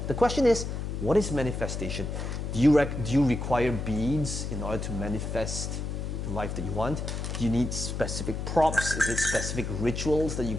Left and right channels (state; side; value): noise; left; hum, 4 dB below the sound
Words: The question is, what is manifestation? Do you require beads in order to manifest the life that you want? Do you need specific props? Is it specific rituals that you